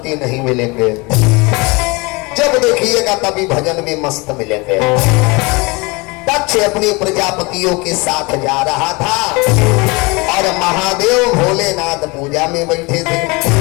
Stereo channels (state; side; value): quieter; right; 26.4 dB